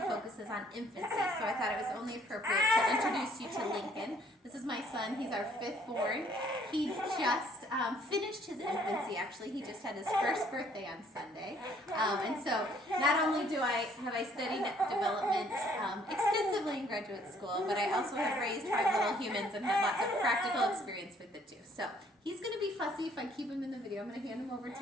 focuses on infancy, so I thought it was only appropriate to introduce you to Lincoln. This is my son, he's our 5th born. He just finished his infancy, actually. He just had his first birthday on Sunday. And so not only have I studied development extensively in graduate school, but I also have raised 5 little humans and had lots of practical experience with it too. So he's going to be fussy if I keep him in the video. I'm going to hand him over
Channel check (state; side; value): normal; both; correlation 0.62